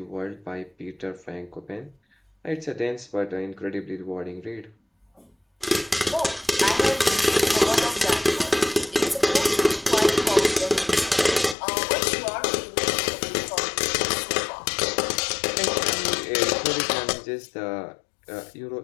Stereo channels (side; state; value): right; drops out; at 11.6 s